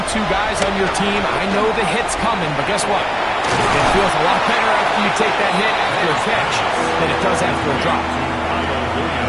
guys on your team, I know the hit's coming, but guess what? It feels a lot better after you take that hit after a catch than it does after a drop.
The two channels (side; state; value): both; identical; correlation 1.00